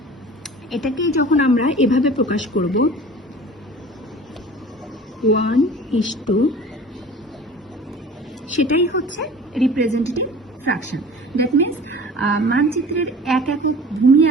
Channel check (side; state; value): both; normal; correlation 0.42